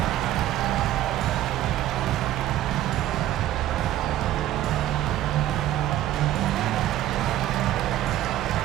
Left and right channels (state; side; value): quieter; left; 13.3 dB